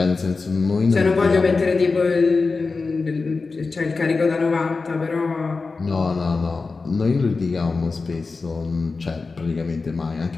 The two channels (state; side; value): quieter; right; 4.1 dB